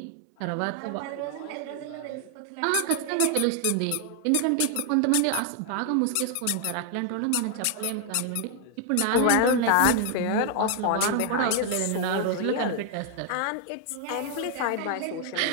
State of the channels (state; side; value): different; both; correlation 0.00